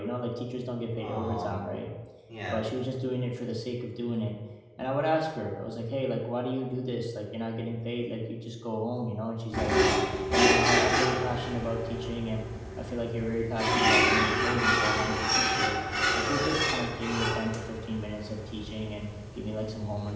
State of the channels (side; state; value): both; identical; correlation 1.00